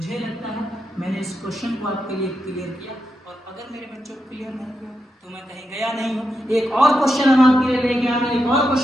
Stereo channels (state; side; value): normal; both; correlation 0.86